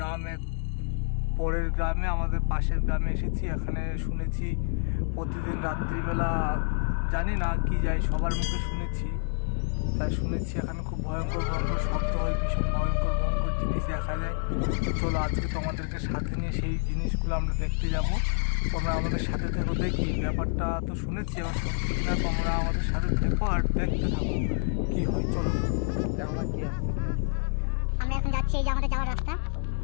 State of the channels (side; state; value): right; silent; digital silence